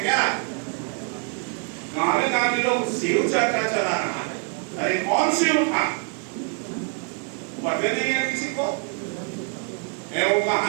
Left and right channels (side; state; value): left; quieter; 37.1 dB